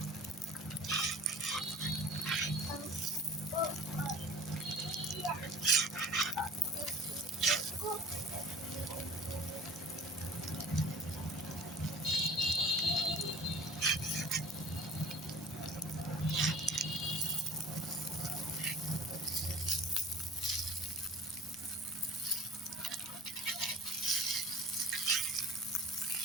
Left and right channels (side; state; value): both; normal; correlation 0.45